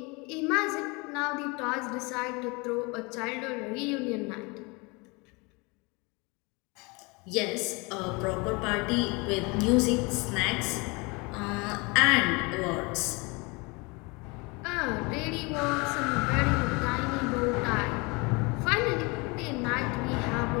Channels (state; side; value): quieter; right; 27.8 dB